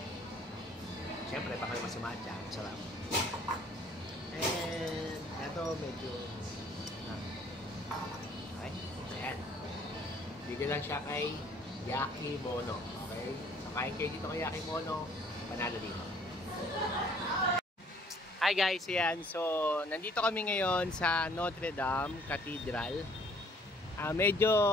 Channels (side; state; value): both; normal; correlation 0.59